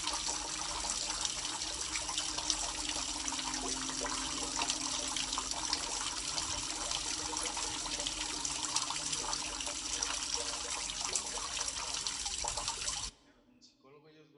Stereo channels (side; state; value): both; identical; correlation 1.00